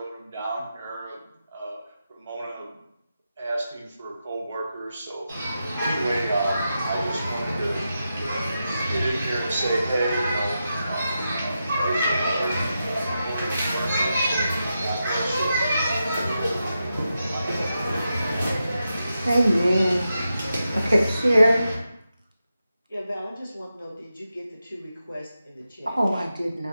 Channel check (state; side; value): inverted; both; correlation -0.88